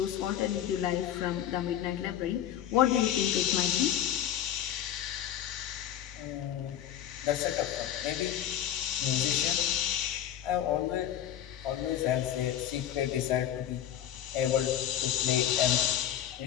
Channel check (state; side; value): quieter; right; 10.7 dB